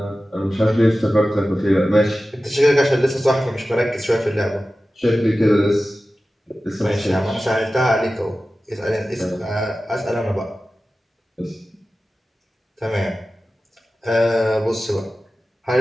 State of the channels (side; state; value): both; normal; correlation 0.95